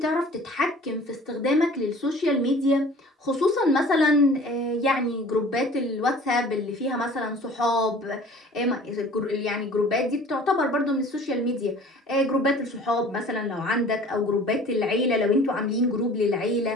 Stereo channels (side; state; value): both; normal; correlation 0.47